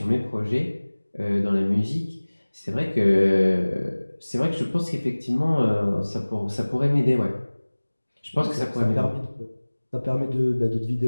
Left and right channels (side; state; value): both; inverted; correlation -1.00